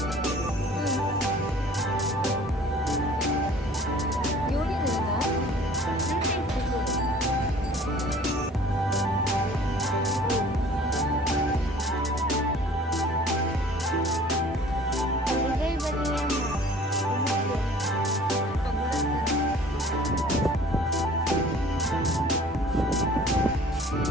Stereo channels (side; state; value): both; normal; correlation 0.50